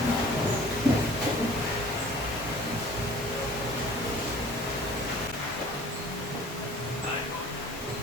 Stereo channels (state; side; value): normal; both; correlation 0.48